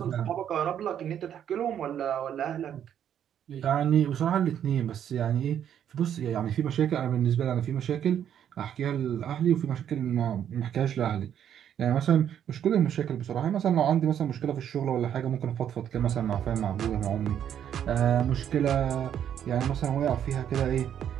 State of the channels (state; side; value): quieter; left; 9.6 dB